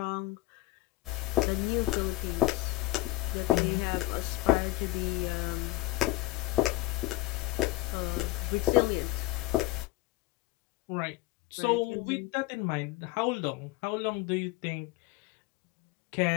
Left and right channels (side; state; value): right; quieter; 19.3 dB